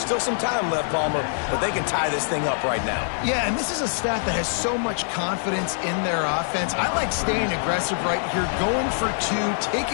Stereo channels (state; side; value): silent; right; digital silence